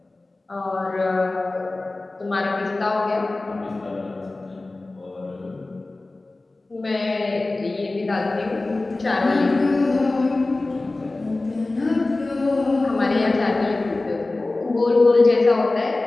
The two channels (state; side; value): quieter; right; 3.1 dB